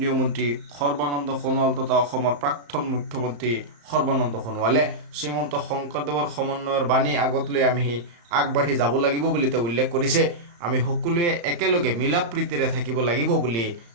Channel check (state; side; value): late; left; 35 ms